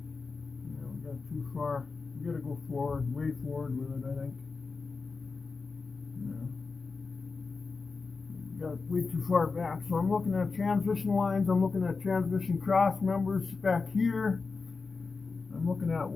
Too far. You gotta go forward, way forward with it, I think. Yeah. Got way too far back. So I'm looking at transmission lines, I'm looking at transmission cross members back here. I'm looking at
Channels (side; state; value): right; quieter; 4.4 dB